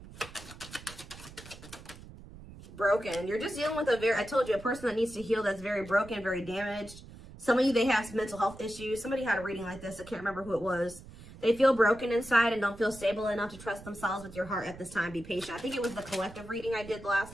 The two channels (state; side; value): noise; right; rumble, 17 dB below the sound